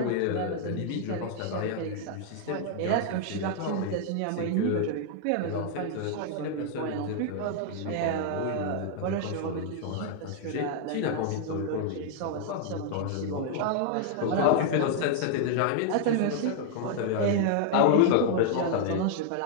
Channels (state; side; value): different; both; correlation 0.00